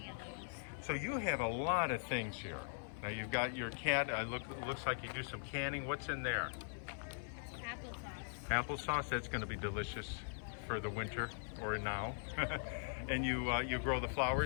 of those. So you have a lot of things here. Now you've got your cat. Looks like you do some canning. What's in there? Applesauce. Applesauce. That's going to be delicious for the winter or now. And you grow the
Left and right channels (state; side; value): silent; right; 50 dB below the other